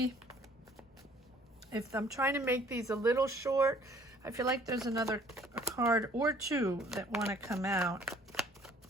if I'm trying to make these a little short. I feel like there's another card or two that want to come out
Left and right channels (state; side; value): normal; both; correlation 0.57